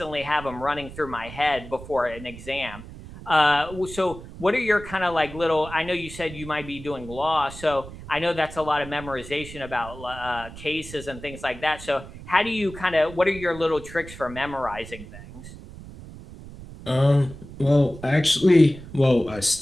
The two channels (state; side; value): noise; right; rumble, 14 dB below the sound